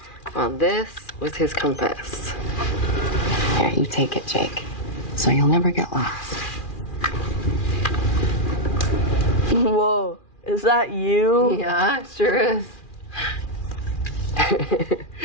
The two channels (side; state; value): right; late; 2.4 ms